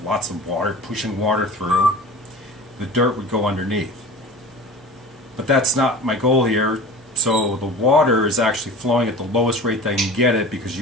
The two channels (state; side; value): normal; both; correlation 0.37